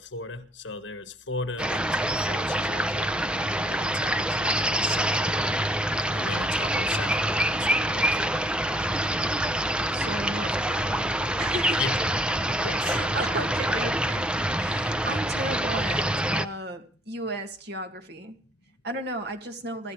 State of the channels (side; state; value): both; normal; correlation 0.63